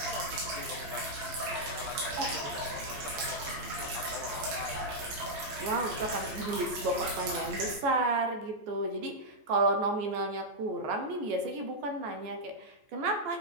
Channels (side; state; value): left; late; 14 ms